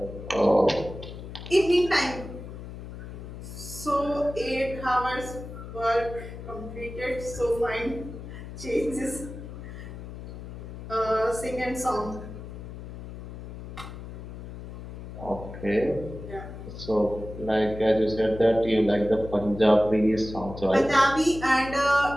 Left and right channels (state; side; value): noise; left; hum, 11 dB below the sound